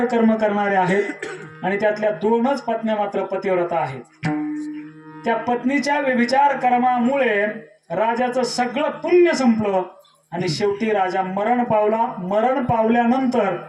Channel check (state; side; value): identical; both; correlation 1.00